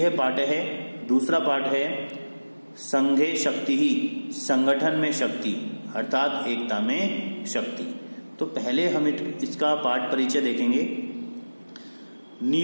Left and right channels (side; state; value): both; inverted; correlation -1.00